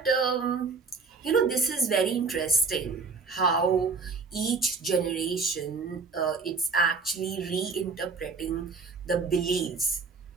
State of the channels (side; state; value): left; quieter; 4.5 dB